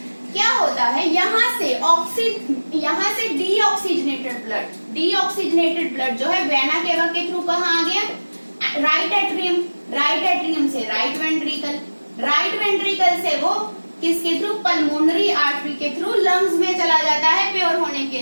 क्या होता है। यहाँ से डीऑक्सीजनेटेड ब्लड जो है वैना केवा के थ्रू कहाँ आ गया? Right atrium. राइट एट्रियम से राइट वेंट्रिकल। राइट वेंट्रिकल से वो किसके थ्रू? पल्मोनरी आर्टरी के थ्रू लंग्स में चला जाता है प्योर होने के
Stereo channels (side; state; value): both; inverted; correlation -1.00